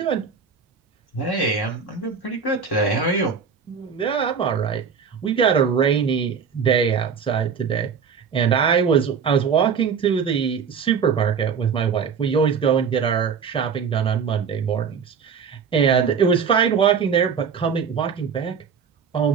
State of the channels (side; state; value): left; quieter; 6.4 dB